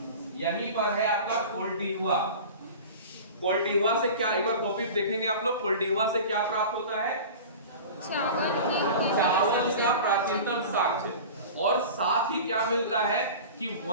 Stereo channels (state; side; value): inverted; both; correlation -0.35